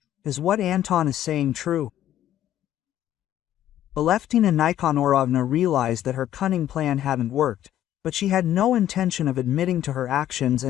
"Is what Anton is saying true?" Aleftina Nikonorovna realized that her cunning plan hadn't worked, but she had no intention of admitting to her actions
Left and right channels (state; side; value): quieter; right; 12.0 dB